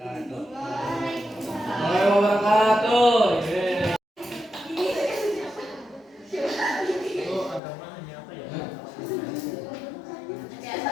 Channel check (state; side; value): drops out; right; at 7.6 s